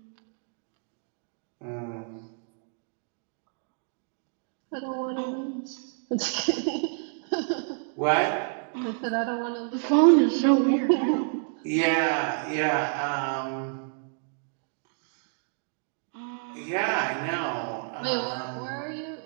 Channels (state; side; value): silent; left; 59 dB below the other